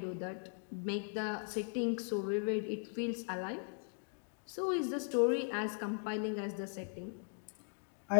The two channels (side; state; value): right; silent; 52 dB below the other